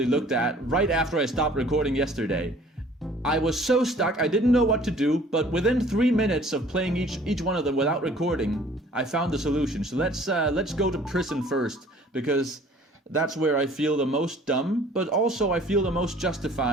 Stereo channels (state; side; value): normal; both; correlation 0.53